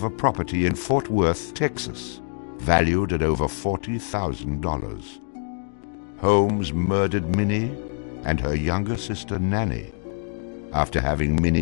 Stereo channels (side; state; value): right; silent; 62 dB below the other